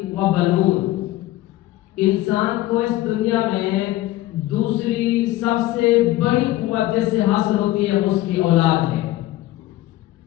وَبَنُونَ. انسان کو اس دنیا میں دوسری سب سے بڑی قوت جس سے حاصل ہوتی ہے اس کی اولاد ہے.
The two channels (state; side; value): quieter; right; 16.1 dB